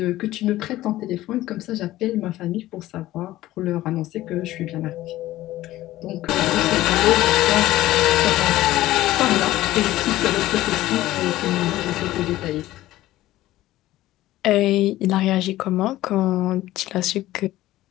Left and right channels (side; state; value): right; quieter; 15.7 dB